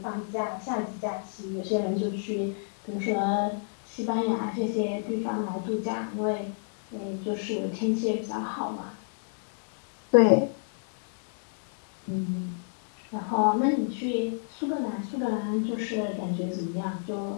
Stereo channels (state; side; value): silent; right; digital silence